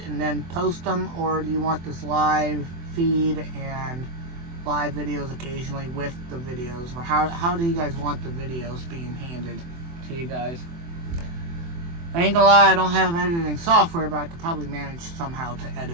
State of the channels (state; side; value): late; left; 24 ms